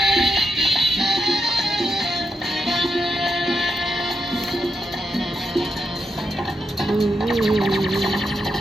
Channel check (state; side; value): normal; both; correlation 0.85